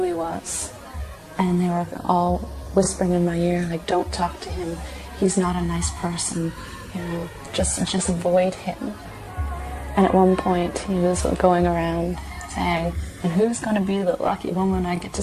he was, and they were all whispering in my ear, like, don't talk to him, he's not a nice person, you know, just avoid him. And at one point he was going around saying, and who's going to be the lucky woman I get to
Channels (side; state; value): both; identical; correlation 1.00